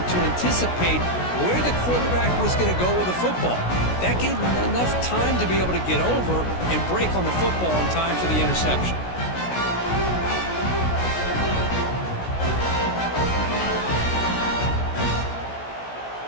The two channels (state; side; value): late; right; 16 ms